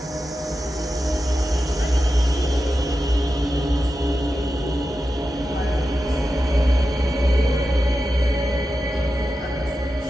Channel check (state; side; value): normal; both; correlation 0.91